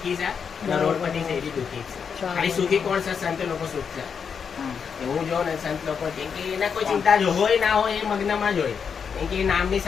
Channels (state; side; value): quieter; right; 6.6 dB